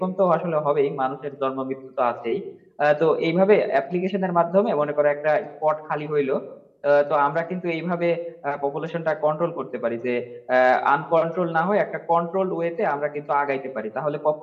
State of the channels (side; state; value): both; identical; correlation 1.00